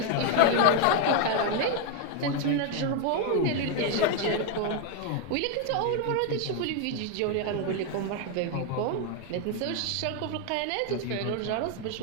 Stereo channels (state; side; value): different; both; correlation 0.01